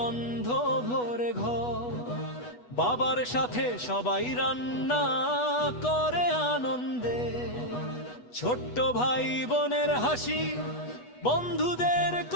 ভরে ঘর, বাবার সাথে সবাই রান্না করে আনন্দে। ছোট্ট ভাই বোনের হাসি, বন্ধুদের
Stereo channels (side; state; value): right; late; 8.2 ms